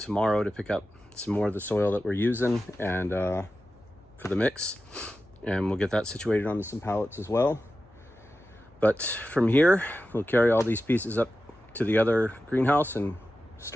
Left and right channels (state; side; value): noise; left; hum, 29 dB below the sound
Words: to pick up some more of the soil that we're using and for the mix, and we'll get that situated onto some pallets as well. But from here, we'll carry all these pieces up to the other greenhouse and